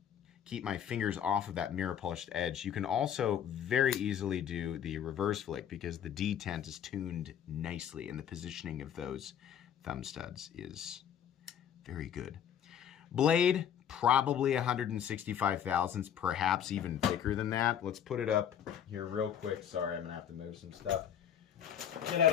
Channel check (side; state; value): right; quieter; 9.2 dB